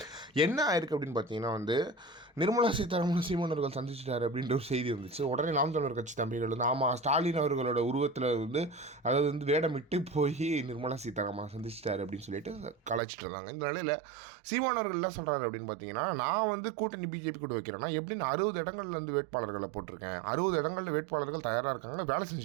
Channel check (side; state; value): left; drops out; at 13.0 s